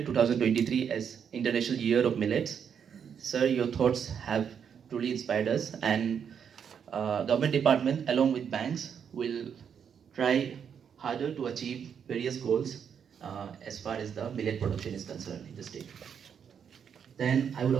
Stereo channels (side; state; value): left; quieter; 7.6 dB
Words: 2023 as International Year of Millets, sir, your thoughts have truly inspired us, and government department along with banks will try harder to achieve various goals as far as the millet production is concerned in the state. Then I would